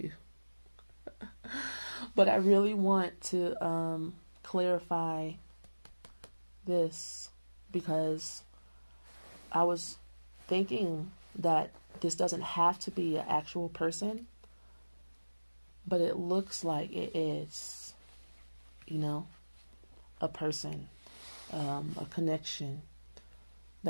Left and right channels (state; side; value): inverted; both; correlation -1.00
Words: But I really want to clarify this because I was thinking that this doesn't have to be an actual person, but it looks like it is, a person, a connection